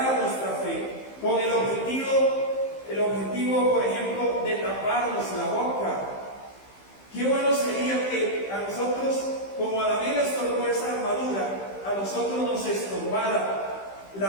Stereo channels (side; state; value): right; late; 15 ms